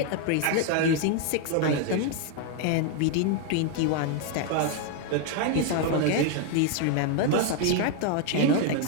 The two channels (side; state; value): both; different; correlation 0.01